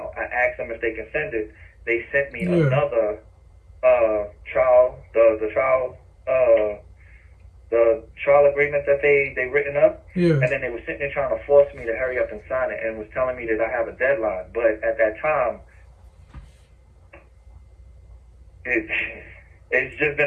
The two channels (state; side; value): identical; both; correlation 1.00